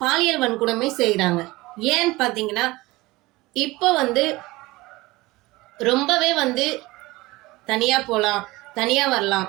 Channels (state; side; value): quieter; left; 20.6 dB